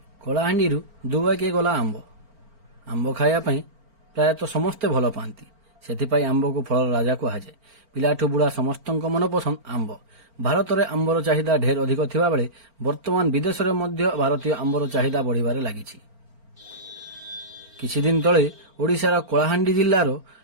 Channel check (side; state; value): left; late; 4.4 ms